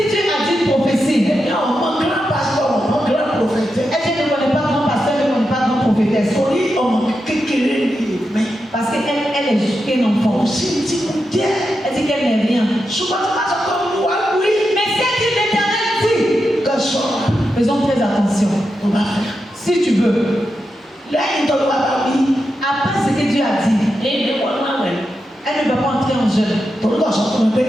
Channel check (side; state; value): both; normal; correlation 0.87